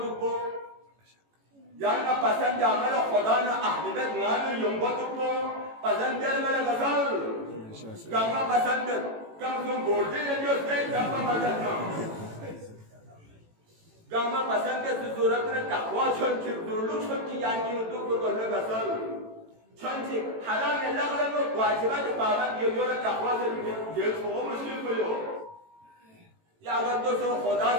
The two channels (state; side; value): late; left; 18 ms